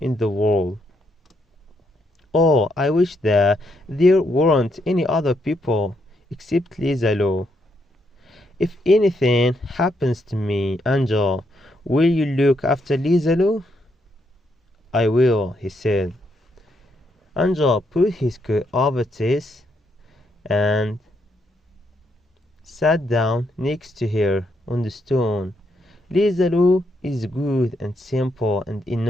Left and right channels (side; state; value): both; normal; correlation 0.77